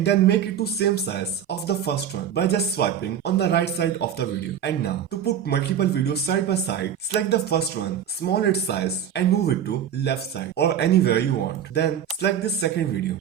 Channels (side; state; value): left; quieter; 9.0 dB